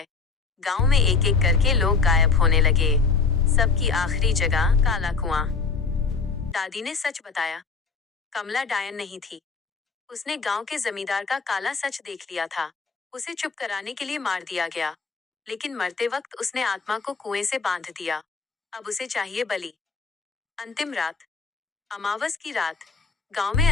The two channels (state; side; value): quieter; right; 4.7 dB